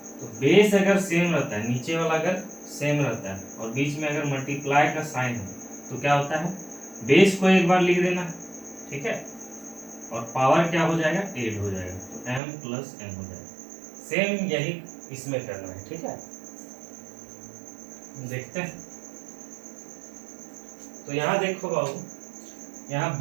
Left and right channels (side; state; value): left; drops out; at 12.4 s